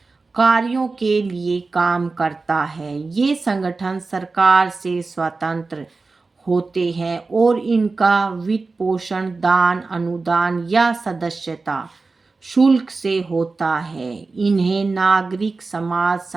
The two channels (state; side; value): quieter; left; 3.9 dB